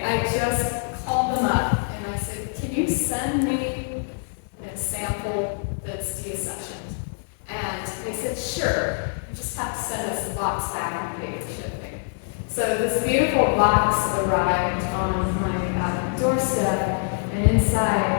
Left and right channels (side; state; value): right; silent; 61 dB below the other